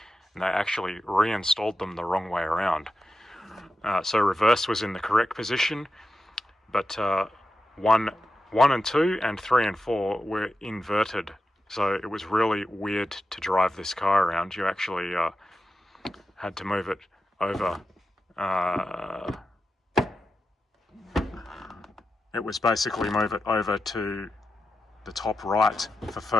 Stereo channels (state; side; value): normal; both; correlation 0.90